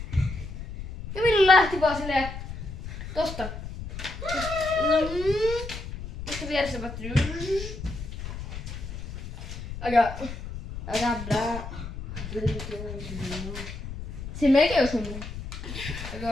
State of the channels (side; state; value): left; noise; rumble, 9 dB below the sound